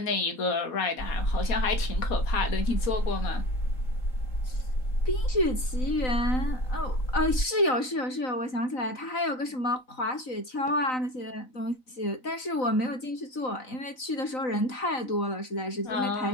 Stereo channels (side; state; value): right; late; 3.9 ms